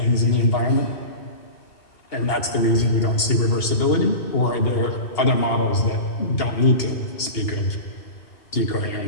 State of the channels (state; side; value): late; right; 2.8 ms